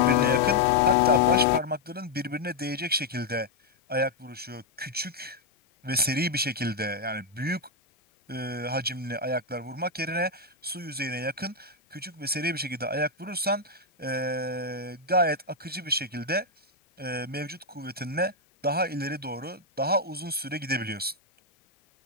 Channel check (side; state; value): right; quieter; 3.1 dB